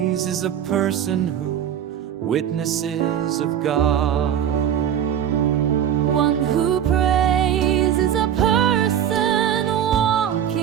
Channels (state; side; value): quieter; left; 9.7 dB